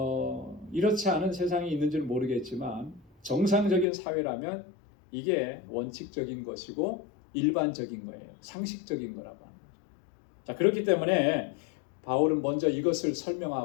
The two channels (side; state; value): right; drops out; at 3.9 s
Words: 이렇지 않은 세상이 있는지는 모르겠지만 정상적인 사회라면 이게 원칙적인 것이고 일반적인 거예요. 상식적인 거라고 하는 거죠. 자, 그렇기 때문에 바울은 먼저 이것을